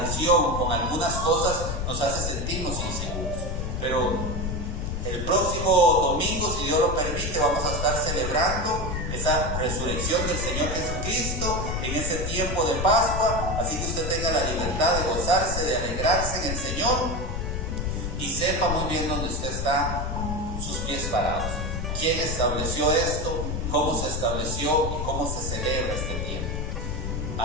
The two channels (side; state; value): left; noise; rumble, 3 dB below the sound